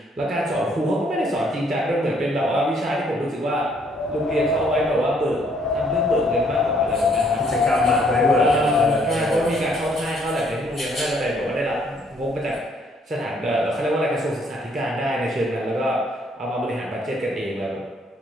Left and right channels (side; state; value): both; normal; correlation 0.66